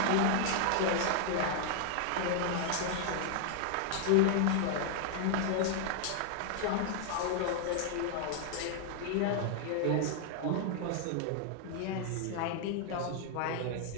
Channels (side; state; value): both; different; correlation 0.00